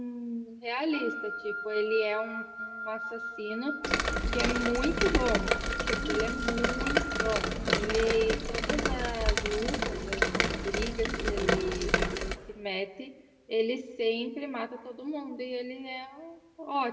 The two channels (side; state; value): both; identical; correlation 1.00